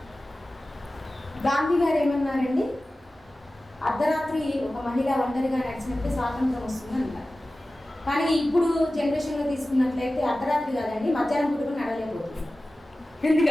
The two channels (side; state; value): both; normal; correlation 0.96